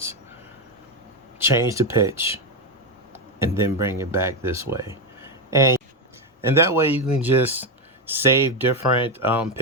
change the pitch, and then bring it back this way. And that way you can just save different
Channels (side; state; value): both; normal; correlation 0.09